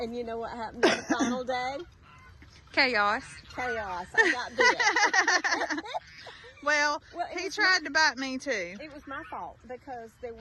you know what happened on the final day? Chaos. Chaos. I got bit. Well, he tried to bite me too. It was my fault because there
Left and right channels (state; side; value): identical; both; correlation 1.00